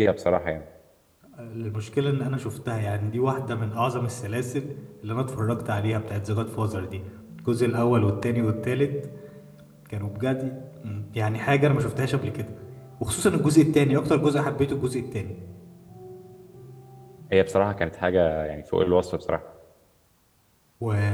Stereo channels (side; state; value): both; identical; correlation 1.00